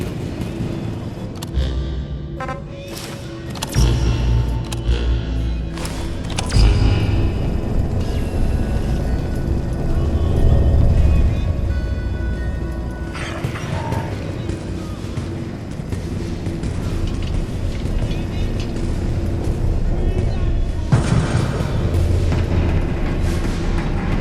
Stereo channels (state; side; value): identical; both; correlation 1.00